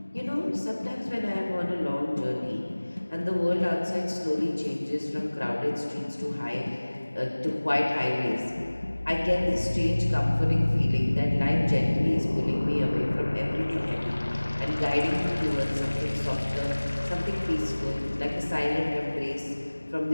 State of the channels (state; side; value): inverted; both; correlation -1.00